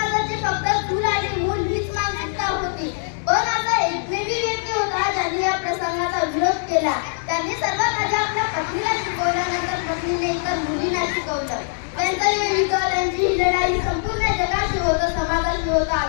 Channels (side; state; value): right; silent; digital silence